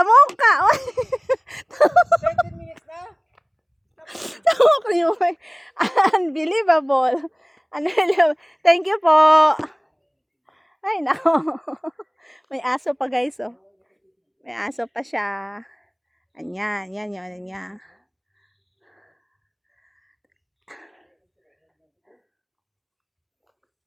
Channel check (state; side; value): identical; both; correlation 1.00